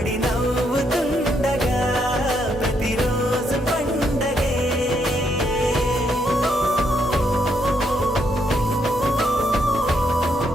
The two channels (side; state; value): both; normal; correlation 0.76